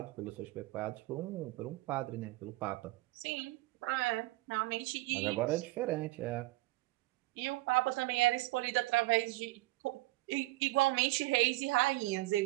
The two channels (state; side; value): quieter; left; 19.9 dB